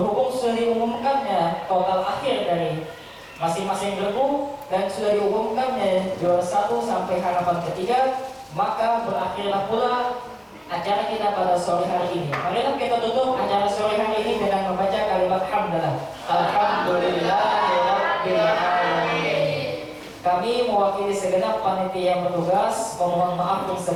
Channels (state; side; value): identical; both; correlation 1.00